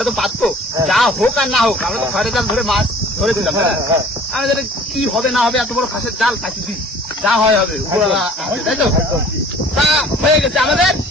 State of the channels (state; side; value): normal; both; correlation 0.50